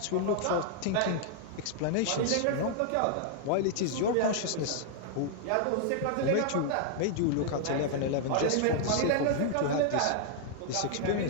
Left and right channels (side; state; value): both; different; correlation -0.01